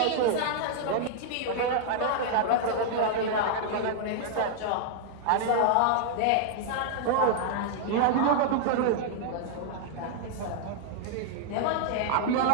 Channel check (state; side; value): different; both; correlation -0.01